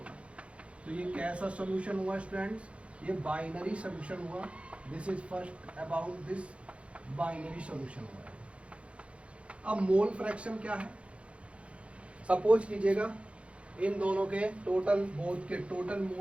तो ये कैसा सोल्यूशन हुआ स्टूडेंट्स? ये बाइनरी सोल्यूशन हुआ। This is first about this binary solution हुआ। अब मोल फ्रैक्शन क्या है? सपोज कीजिएगा इन दोनों के टोटल, बोथ के टोटल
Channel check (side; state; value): left; late; 0.061 ms